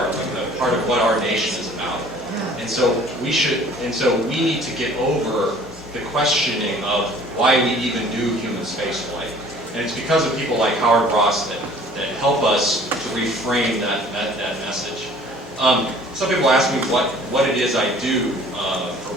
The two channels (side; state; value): both; normal; correlation 0.52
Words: what our nation is about. And so we need to get over the questioning of why we even do human spaceflight. And it's because of people like Howard Ross that help us to reframe that message. Some people ask me what it is I do for